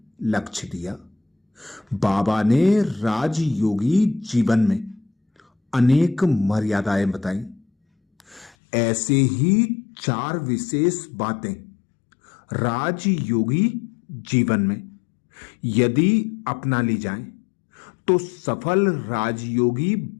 लक्ष्य दिया। बाबा ने राजयोगी जीवन में अनेक मर्यादाएं बताई। ऐसे ही 4 विशेष बातें राजयोगी जीवन में यदि अपना ली जाएं तो सफल राजयोगी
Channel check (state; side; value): drops out; right; at 8.5 s